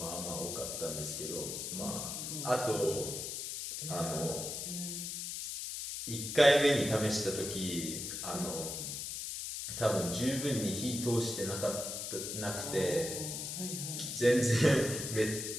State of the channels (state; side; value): noise; left; hiss, 5 dB below the sound